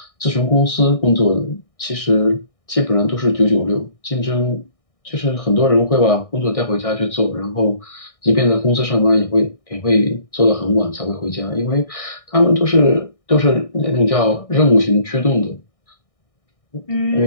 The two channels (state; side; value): late; right; 1.6 ms